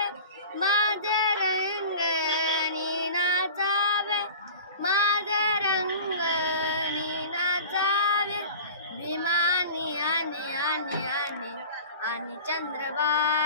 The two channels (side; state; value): both; inverted; correlation -0.38